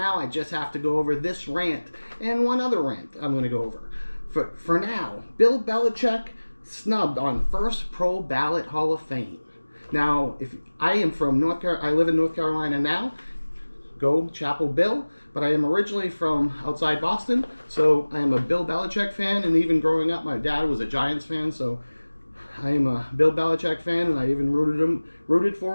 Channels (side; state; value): both; inverted; correlation -1.00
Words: I just have to go over this rant and one other rant I'm going to go over. For now, Bill Belichick snubbed on first pro ballot Hall of Fame. Now, if I am from North Carolina, I live in North Carolina now. Go Chapel Bill, but I am originally from outside Boston, so I am a Bill Belichick fan, and even growing up, my dad was a Giants fan, so I am a Bill Belichick fan, and I even rooted